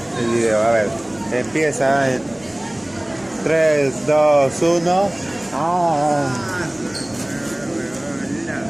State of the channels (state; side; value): noise; right; hum, 28 dB below the sound